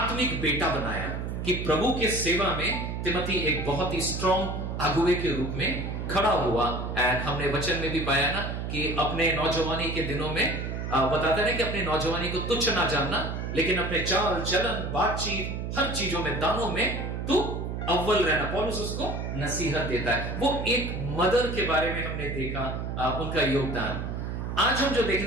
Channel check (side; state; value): right; noise; hum, 4 dB below the sound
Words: बेटा बनाया कि प्रभु के सेवा में तिमोथी एक बहुत ही स्ट्रॉन्ग अगुवे के रूप में खड़ा हुआ। एंड हमने वचन में भी पाया ना कि अपने नौजवानी के दिनों में बताते हैं कि अपने नौजवानी को तुच्छ ना जानना, लेकिन अपने चाल चलन बातचीत हर चीजों में दानों में तू अव्वल रहना। पौलुस उसको नसीहत देता है। वो एक मदर के बारे में हमने देखा, उनका योगदान। आज हम जो